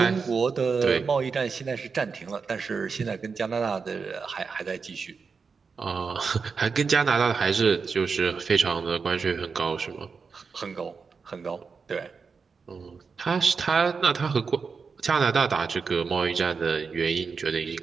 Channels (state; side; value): quieter; left; 5.2 dB